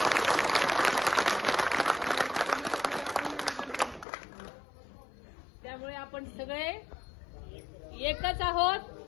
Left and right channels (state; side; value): drops out; right; at 4.0 s